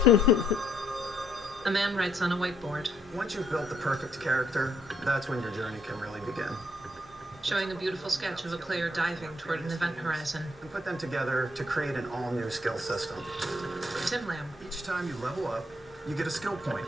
A man writes on a whiteboard, Once you've built the perfect character, that's when your journey can really begin. showing a beautiful sketch of a player diving toward an event horizon. And put them together to create an all-new skill system. Tim Lamb. Each time you level up, you get a skill point,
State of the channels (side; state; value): both; normal; correlation 0.71